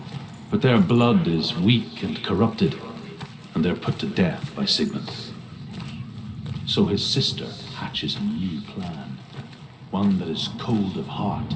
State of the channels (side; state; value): both; identical; correlation 1.00